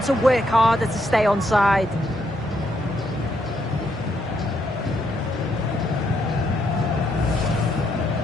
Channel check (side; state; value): both; normal; correlation 0.76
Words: to work harder to stay onside.